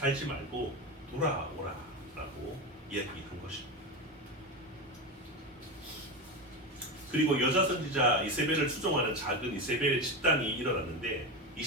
말고 돌아오라라고 이야기한 것입니다. 그리고 여자 선지자 이세벨을 추종하는 작은 이세벨의 집단이 일어났는데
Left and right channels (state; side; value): normal; both; correlation 0.18